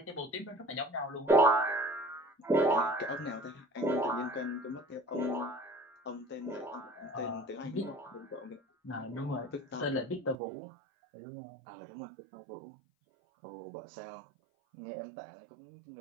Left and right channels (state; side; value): drops out; left; at 10.4 s